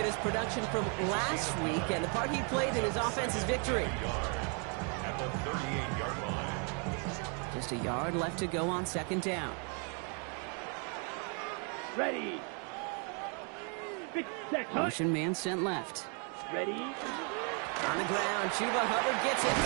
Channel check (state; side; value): quieter; left; 38.3 dB